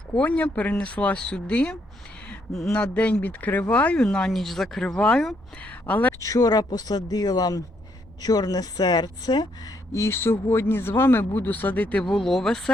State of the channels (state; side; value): normal; both; correlation 0.73